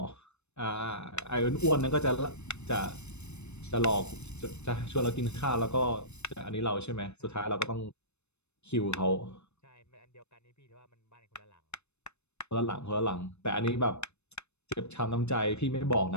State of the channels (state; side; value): late; right; 0.81 ms